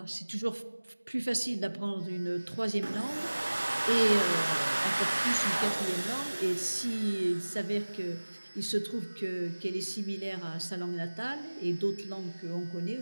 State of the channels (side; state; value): both; inverted; correlation -1.00